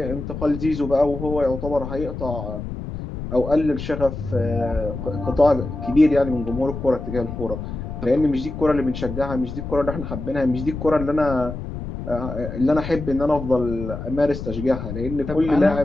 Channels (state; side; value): noise; left; rumble, 7 dB below the sound